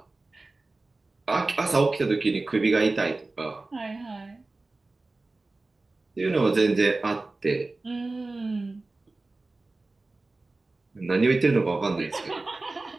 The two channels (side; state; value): left; quieter; 3.3 dB